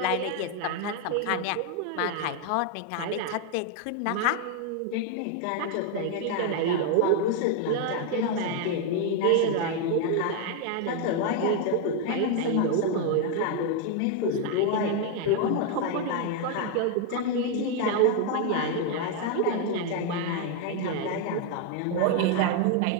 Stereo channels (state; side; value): different; both; correlation 0.01